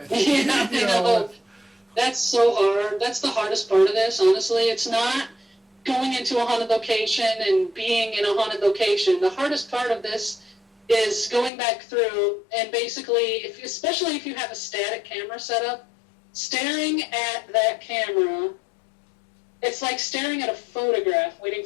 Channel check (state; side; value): drops out; right; at 11.5 s